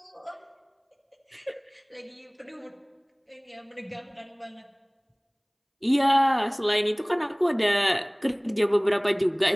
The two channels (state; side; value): identical; both; correlation 1.00